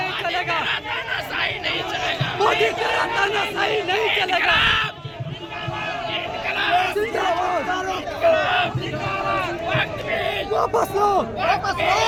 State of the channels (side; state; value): both; identical; correlation 1.00